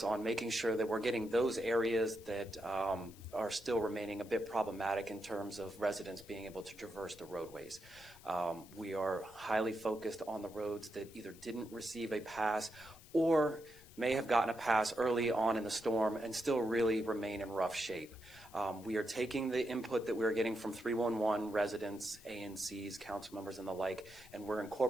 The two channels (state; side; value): noise; left; hiss, 22 dB below the sound